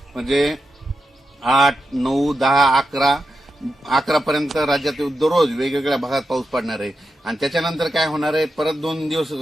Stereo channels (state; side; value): normal; both; correlation 0.89